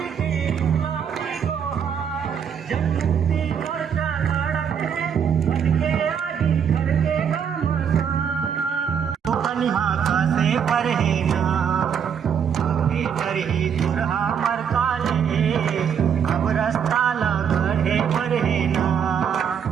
पर है ना, आगे करही दुरहा मर काले, अब रास्ता लगड़े पर है ना,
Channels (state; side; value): quieter; left; 7.7 dB